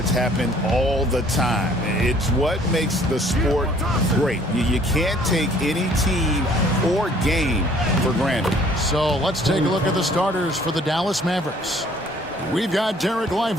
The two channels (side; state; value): both; normal; correlation 0.57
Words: happen all the time. It's what makes the sport great. You can't take any team or game for granted. So let's take a look at the starters for the Dallas Mavericks. We've got Derek